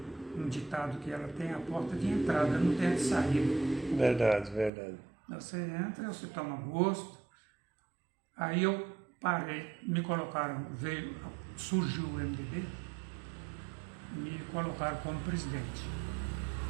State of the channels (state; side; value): drops out; left; at 4.7 s